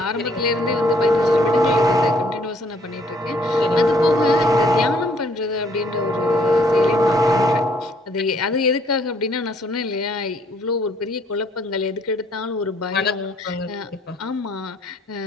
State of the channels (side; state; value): both; normal; correlation 0.64